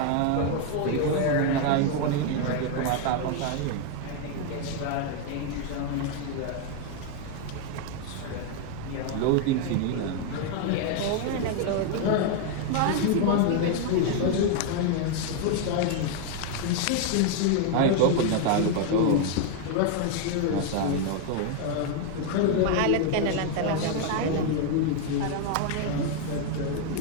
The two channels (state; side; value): different; both; correlation 0.00